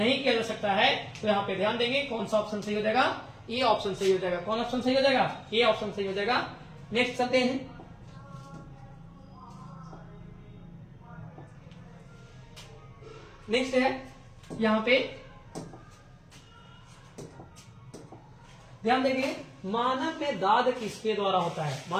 किया जा सकता है। तो यहाँ पे ध्यान देंगे कौन सा ऑप्शन सही हो जाएगा? ए ऑप्शन सही हो जाएगा। कौन ऑप्शन सही हो जाएगा? ए ऑप्शन सही हो जाएगा। नेक्स्ट चलते हैं। नेक्स्ट है यहां पे ध्यान देंगे, मानव में दाद किसके द्वारा होता है?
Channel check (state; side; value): identical; both; correlation 1.00